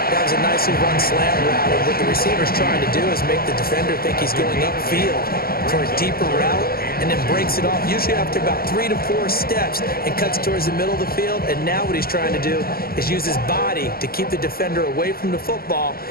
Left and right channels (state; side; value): late; right; 0.43 ms